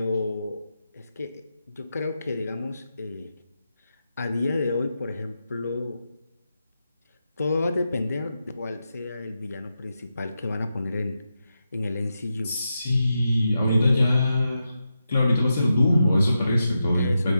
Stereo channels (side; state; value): both; inverted; correlation -0.88